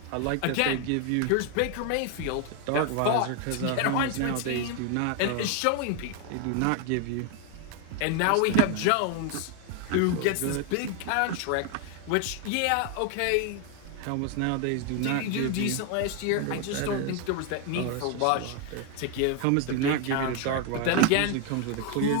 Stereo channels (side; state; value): both; different; correlation 0.01